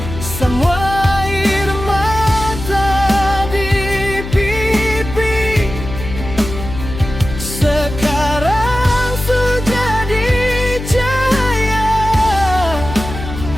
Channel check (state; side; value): noise; left; hum, 9 dB below the sound